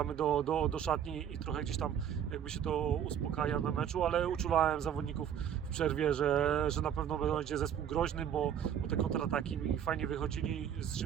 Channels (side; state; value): left; quieter; 9.2 dB